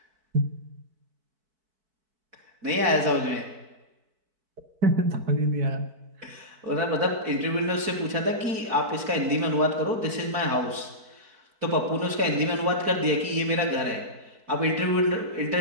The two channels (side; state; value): left; late; 4.5 ms